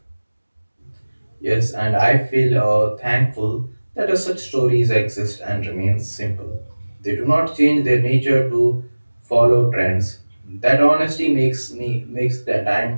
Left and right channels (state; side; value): inverted; both; correlation -1.00